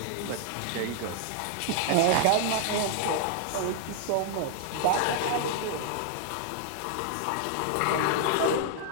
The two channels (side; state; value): both; different; correlation 0.00